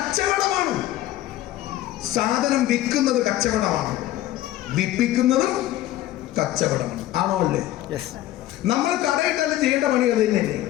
സാധനം വിൽക്കുന്നത് കച്ചവടമാണ്, വിൽപ്പിക്കുന്നതും കച്ചവടമാണ്. ആണോ അല്ലേ? നമ്മൾ കടയിട്ടാലും ചെയ്യേണ്ട പണി അത് തന്നെയല്ലേ,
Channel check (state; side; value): quieter; right; 14.5 dB